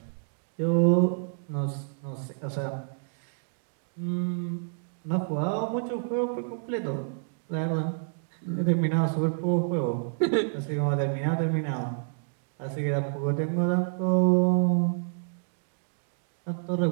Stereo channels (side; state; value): left; silent; digital silence